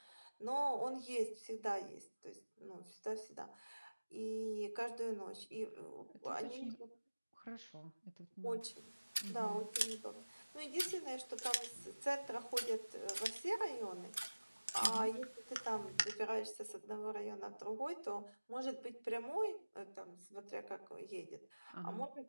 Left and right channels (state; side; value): inverted; both; correlation -1.00